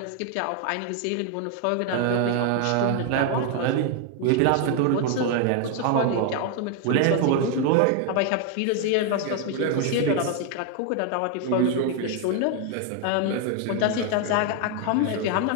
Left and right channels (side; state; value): both; different; correlation 0.01